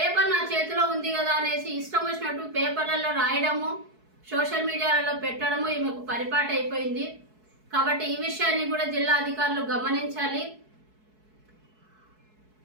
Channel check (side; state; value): left; late; 4.6 ms